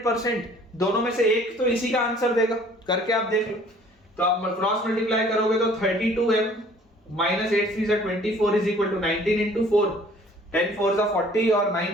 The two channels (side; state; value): both; normal; correlation 0.54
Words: दोनों में से एक तो इसी का आंसर देगा, करके आप देख लो। तो आप क्रॉस मल्टीप्लाई करोगे तो 32m - 8 3 24 इज इक्वल टू 19 × 4, 10 4 40 और